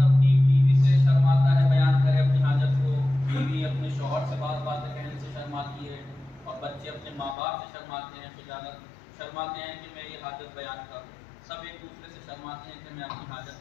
अपनी बीवी से शर्माता है बयान करे अपनी हाजत को, बीवी अपने शौहर से बातें कहने से शर्माती है और बच्चे अपने माँ बाप से शर्माते हैं, शर्माते हैं कि मैं ये हाजत बयान करूँ। सब एक दूसरे से शर्माते हैं कि मैं अपनी हाजत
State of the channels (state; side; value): drops out; right; at 7.4 s